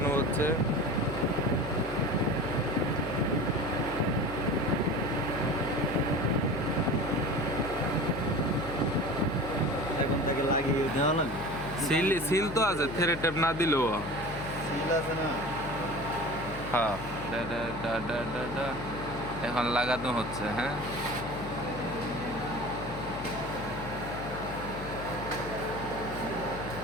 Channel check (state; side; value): noise; left; hum, 10 dB below the sound